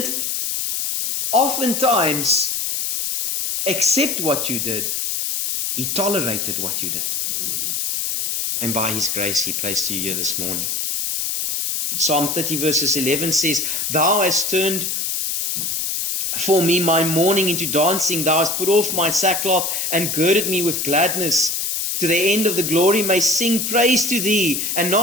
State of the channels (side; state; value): left; noise; hiss, 1 dB below the sound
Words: oftentimes accept what you did. He tolerated what you did. And by his grace, he placed you here this morning. Psalm 30 verses 11 says, Thou hast turned for me my mourning into dancing. Thou hast put off my sackcloth and girded me with gladness. To the end of the glory may sing praise to thee and